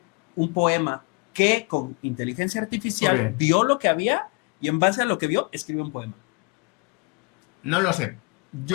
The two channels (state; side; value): quieter; right; 30.5 dB